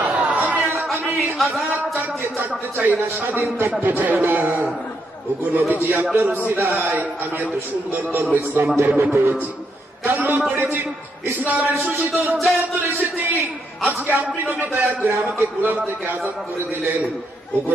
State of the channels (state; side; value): normal; both; correlation 0.78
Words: আমি আজাদ চাকতে চাই না, স্বাধীন থাকতে চাই না। ওগো নবীজি, আপনার উসিলায় আমি এত সুন্দর ধর্ম ইসলাম ধর্ম পেয়েছি, কালমা পড়েছি, ইসলামের সুশীতল ছায়া তুলে এসেছি। আজকে আপনি নবী দয়া করে আমাকে গোলাম থেকে আজাদ করে দিলেন। ওগো